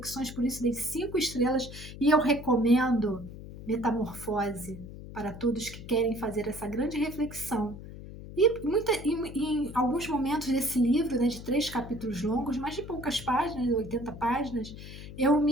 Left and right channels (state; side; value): noise; left; hum, 13 dB below the sound